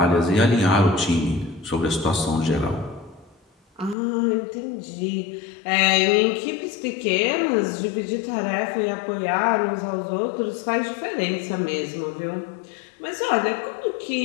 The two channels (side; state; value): right; drops out; at 4.0 s